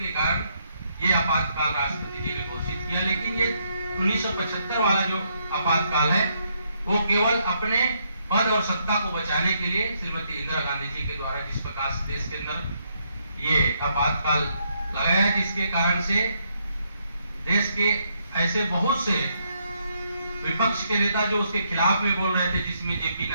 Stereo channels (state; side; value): inverted; both; correlation -0.75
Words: कारण ये आपातकाल राष्ट्रपति जी ने घोषित किया। लेकिन ये 1975 वाला जो आपातकाल है वो केवल अपने पद और सत्ता को बचाने के लिए श्रीमती इंदिरा गांधी जी के द्वारा जिस प्रकार से देश के अंदर ये आपातकाल लगाया, जिसके कारण से देश के ऐसे बहुत से विपक्ष के नेता जो उसके खिलाफ में बोल रहे थे, जिसमें जेपी